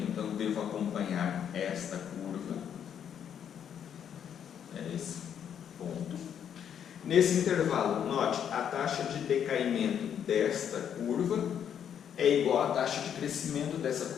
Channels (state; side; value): quieter; right; 8.8 dB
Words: então devo acompanhar esta curva. É esse ponto. Nesse intervalo, note, a taxa de decaimento desta curva é igual à taxa de crescimento dessa